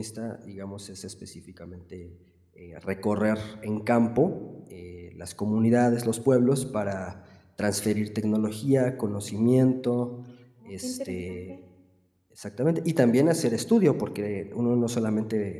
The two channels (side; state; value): both; identical; correlation 1.00